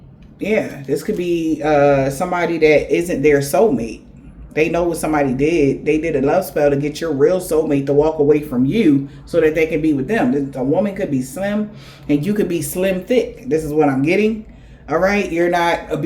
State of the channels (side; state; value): both; identical; correlation 1.00